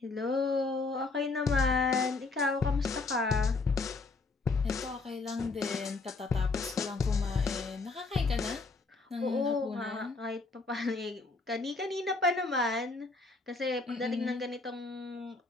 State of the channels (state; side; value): quieter; right; 3.7 dB